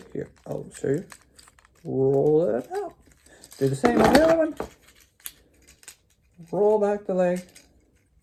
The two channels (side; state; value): both; identical; correlation 1.00